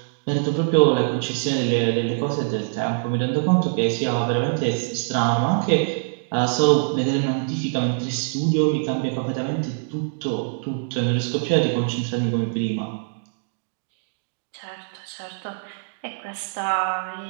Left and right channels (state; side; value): silent; left; digital silence